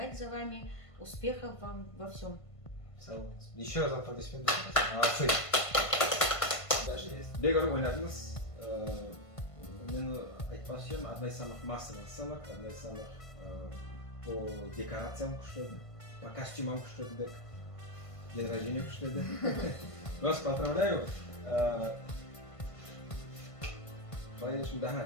за вами. Успехов вам во всем. Еще раз аплодисменты. Молодцы. Дальше есть. Бегару ойнадыңыз. Мен айтпасым, одна из самых массовых сценок, одна из самых по декорациям күшті, по костюмам күшті, день рождения күшті. Вас поздравляю. Конечно, да,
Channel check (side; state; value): right; late; 1.5 ms